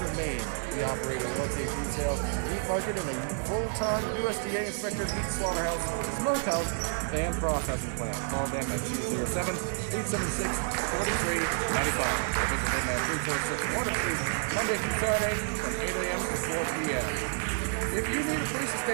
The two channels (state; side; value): silent; left; 58 dB below the other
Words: Maine. We operate a located retail, meat market, and full-time USDA inspected meat slaughterhouse, smokehouse, and processing plant. Call them at 207-876-4395. Visit them at 346 Water Street, Monday through Saturday from 8 a.m. to 4 p.m. If you need a place to